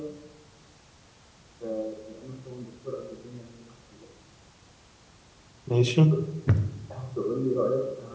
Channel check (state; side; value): identical; both; correlation 1.00